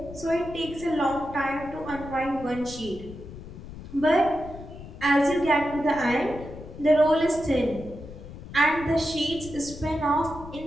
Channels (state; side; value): noise; left; rumble, 14 dB below the sound